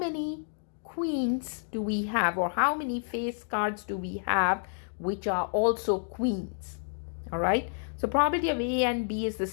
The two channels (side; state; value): right; silent; digital silence